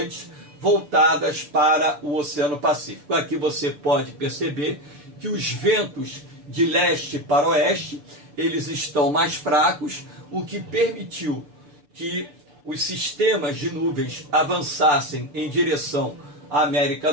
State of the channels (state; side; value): late; left; 6.8 ms